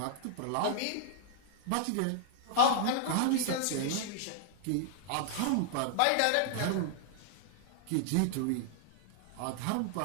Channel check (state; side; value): different; both; correlation -0.01